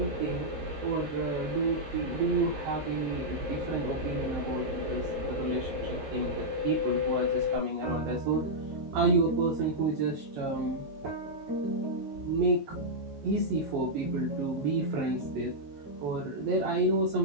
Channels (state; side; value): late; left; 14 ms